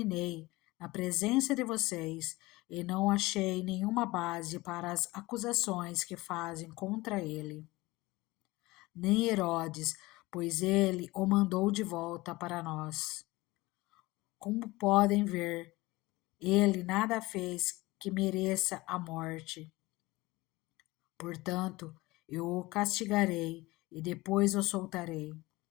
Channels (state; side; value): quieter; right; 20.7 dB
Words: na presença de vocês e não achei nenhuma base para as acusações que fazem contra ele. Nem Herodes, pois ele o mandou de volta para nós. Como podem ver, ele nada fez que mereça a morte. Portanto, eu o castigarei e depois o soltarei.